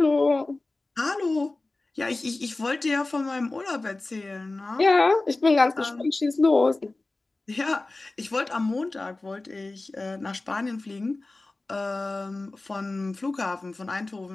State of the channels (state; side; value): quieter; right; 3.1 dB